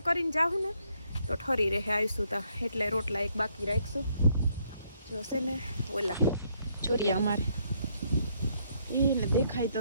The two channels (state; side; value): inverted; both; correlation -0.71